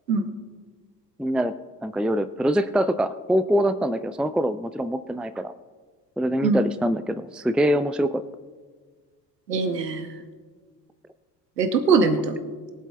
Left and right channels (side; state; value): both; normal; correlation 0.70